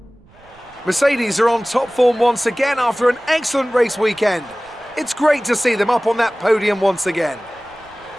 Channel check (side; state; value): right; noise; rumble, 28 dB below the sound